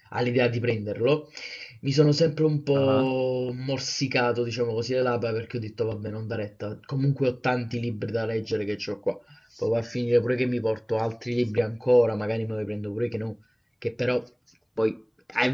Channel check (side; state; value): both; identical; correlation 1.00